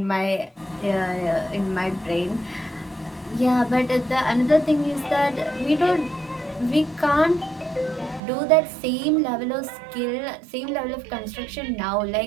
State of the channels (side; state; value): left; drops out; at 8.2 s